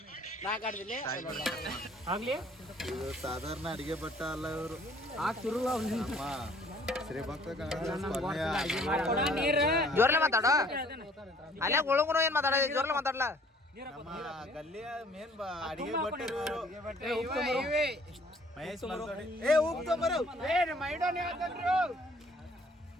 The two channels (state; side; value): normal; both; correlation 0.57